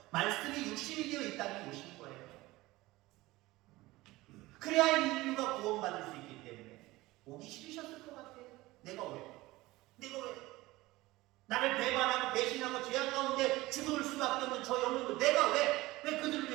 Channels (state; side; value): quieter; left; 19.4 dB